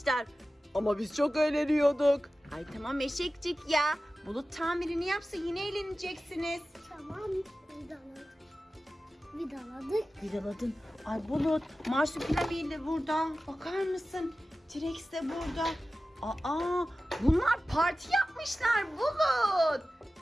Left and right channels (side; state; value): both; normal; correlation 0.95